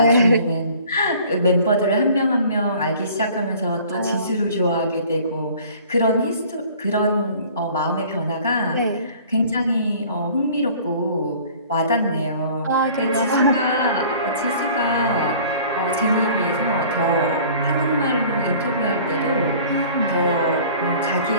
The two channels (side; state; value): both; inverted; correlation -0.49